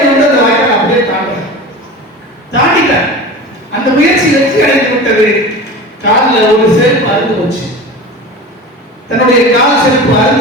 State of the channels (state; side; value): normal; both; correlation 0.33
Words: வந்து அந்த வாய்க்கால் அப்படியே தாண்டிட்டார். அந்த முயற்சி வெற்றி அடைந்து விட்டது. காலில் ஒரு செருப்பு அறுந்து போச்சு. தன்னுடைய கால் செருப்பு